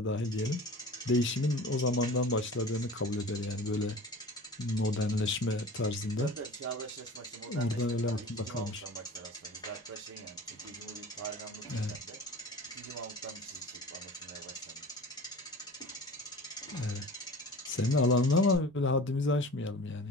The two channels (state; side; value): normal; both; correlation 0.39